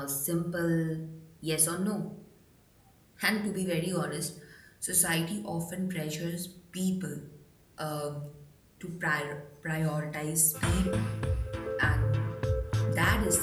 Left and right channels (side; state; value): both; identical; correlation 1.00